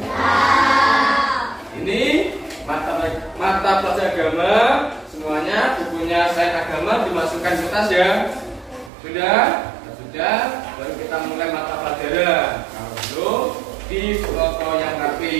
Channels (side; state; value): left; drops out; at 8.9 s